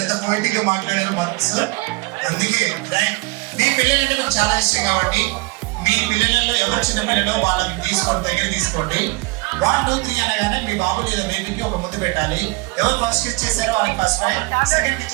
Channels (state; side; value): quieter; left; 26.0 dB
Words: పోయిటిక్ గా మాట్లాడారు మనసు అందుకే మీ పిల్లలంటే నాకు చాలా ఇష్టం కాబట్టి మీ పిల్లలలో ఎవరు చిన్న పిల్లలో వాళ్ళని తీసుకోండి దగ్గర తీసుకోండి 1 2 3 అనగానే మీ బాబు లేదా బేబీకి ఒక ముద్దు పెట్టాలి ఎవరు ఫస్ట్ ఇచ్చేసారో వాళ్ళకి ఫస్ట్ ప్రైజ్ సెకండ్